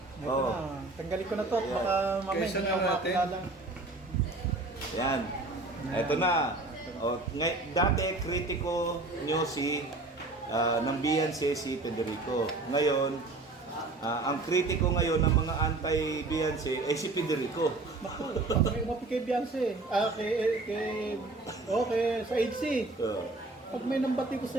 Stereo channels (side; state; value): left; quieter; 3.2 dB